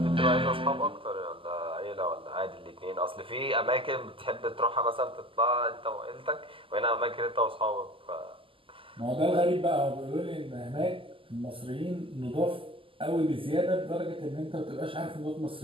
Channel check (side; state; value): left; late; 0.25 ms